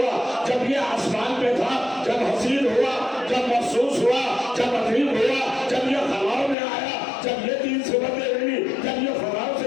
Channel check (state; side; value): drops out; right; at 6.6 s